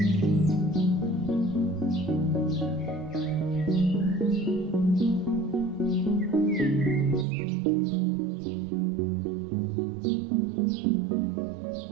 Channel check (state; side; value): drops out; left; at 7.2 s